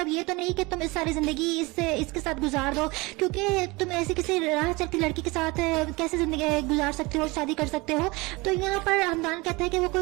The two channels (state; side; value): quieter; left; 24.0 dB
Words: ये तो नहीं कि तुम इस सारी जिंदगी इसके साथ गुजार दो, क्योंकि तुम ऐसी किसी राह चलती लड़की के साथ कैसे जिंदगी गुजार सकते हो, शादी कर सकते हो। तो यहाँ पर हमदान कहता है कि वो